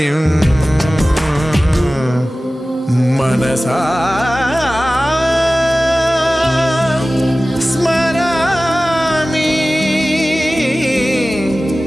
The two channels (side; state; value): both; normal; correlation 0.97